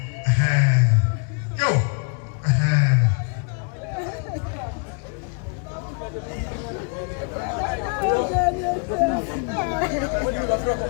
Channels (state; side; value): quieter; right; 39.2 dB